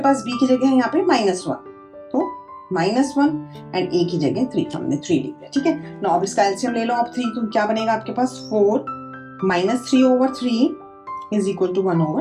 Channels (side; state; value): both; identical; correlation 1.00